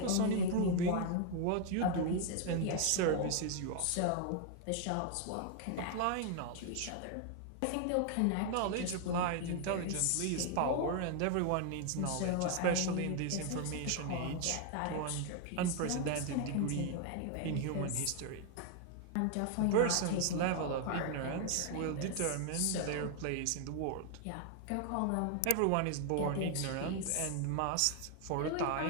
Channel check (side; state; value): both; different; correlation 0.00